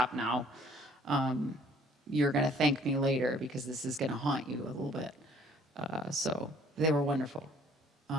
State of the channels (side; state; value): both; normal; correlation 0.58